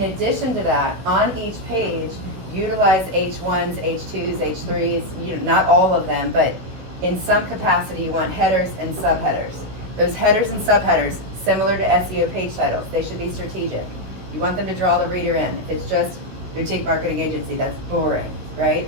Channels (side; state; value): left; late; 16 ms